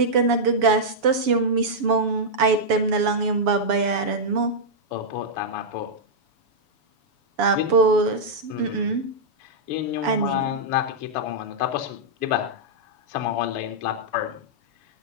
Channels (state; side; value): late; left; 7.1 ms